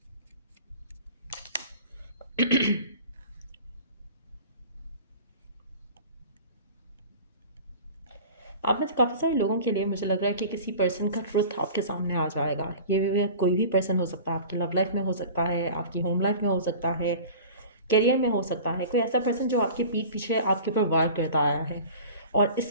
आप में से काफ़ी सारे लोगों के लिए मुझे लग रहा है कि किसी पर्सन का ट्रुथ आपके सामने आ जाएगा। ये भी कोई भी पर्सन हो सकता है, आपकी लव लाइफ में हो सकता है, आपकी होम लाइफ में हो सकता है, करियर में हो सकता है। कोई ऐसा पर्सन जो आपके पीठ पीछे आपके ऊपर वार करता आया है और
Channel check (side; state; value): both; inverted; correlation -0.40